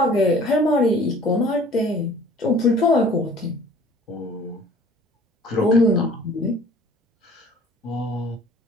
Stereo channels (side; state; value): both; normal; correlation 0.51